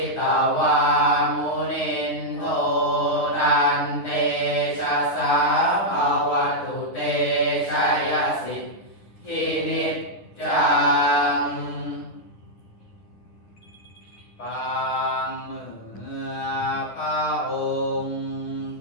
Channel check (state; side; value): late; right; 10 ms